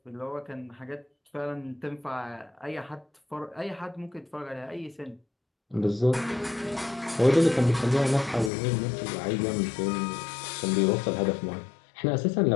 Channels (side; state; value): right; drops out; at 8.5 s